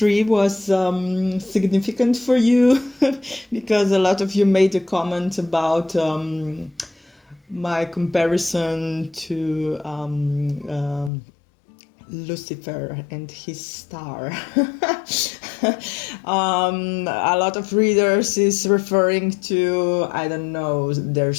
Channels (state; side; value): drops out; right; at 11.1 s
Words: was significant for you because a lot of you made a comment about my comparison to Lucifer and his star. A lot of readers is referring to, I don't know, their